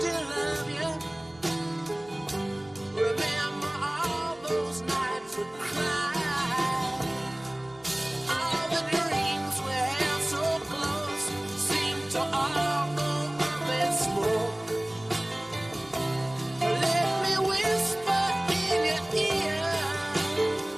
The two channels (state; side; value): noise; right; hum, 28 dB below the sound